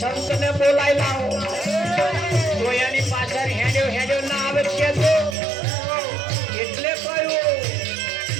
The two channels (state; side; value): drops out; left; at 5.4 s